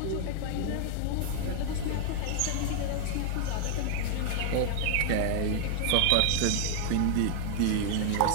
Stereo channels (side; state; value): both; different; correlation 0.00